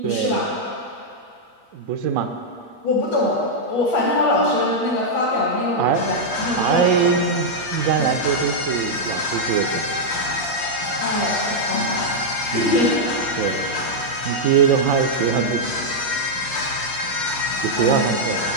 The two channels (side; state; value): right; late; 8.5 ms